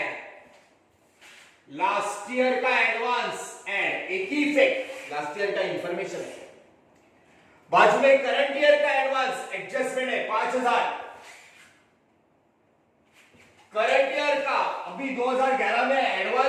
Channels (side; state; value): both; identical; correlation 1.00